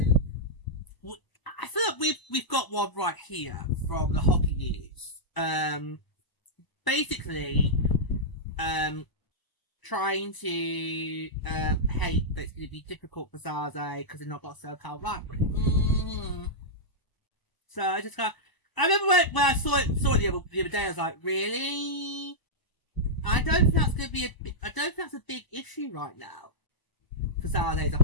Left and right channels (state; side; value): late; right; 1.0 ms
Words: I feel like we've got one right here from the hockey news. Basically, trying to hate that it's going to be difficult for San Jose because they've not got a SoCal rivalry. So I just got. I remember when I saw it the other day. I was like, really? I don't think that's going to be I don't think that's a big issue right now for San Jose as a